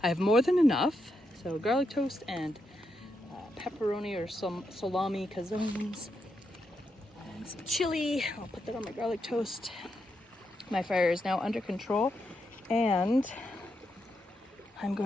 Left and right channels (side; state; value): both; normal; correlation 0.83